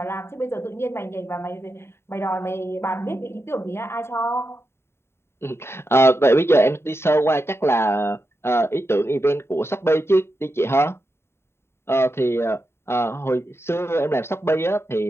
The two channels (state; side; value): late; right; 0.12 ms